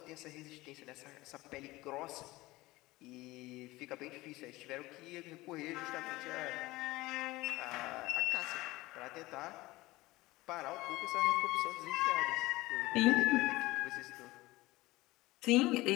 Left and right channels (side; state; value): right; quieter; 19.5 dB